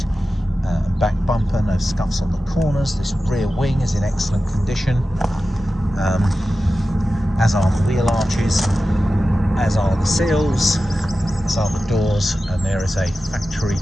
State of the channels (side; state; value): both; normal; correlation 0.94